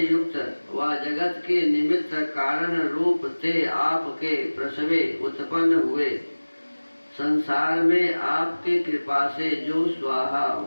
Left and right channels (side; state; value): both; inverted; correlation -1.00